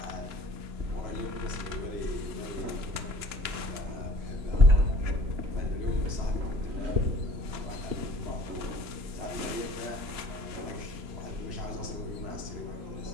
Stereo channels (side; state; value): left; late; 3.0 ms